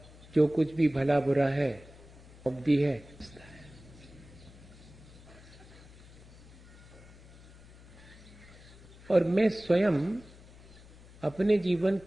जो कुछ भी भला बुरा है उपदी है, और मैं स्वयं अपने जीवन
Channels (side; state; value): left; noise; hum, 21 dB below the sound